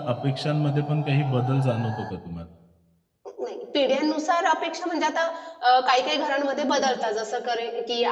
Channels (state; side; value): identical; both; correlation 1.00